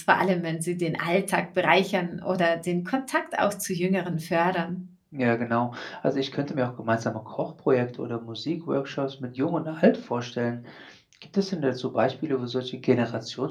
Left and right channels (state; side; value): identical; both; correlation 1.00